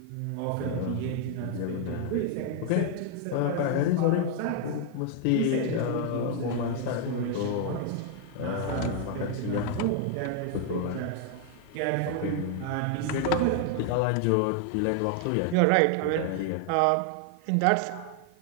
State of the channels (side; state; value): both; different; correlation 0.00